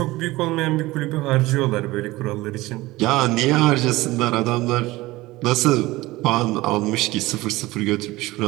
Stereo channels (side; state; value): left; quieter; 19.4 dB